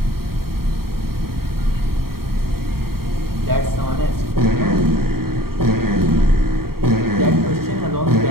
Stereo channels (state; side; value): late; left; 0.94 ms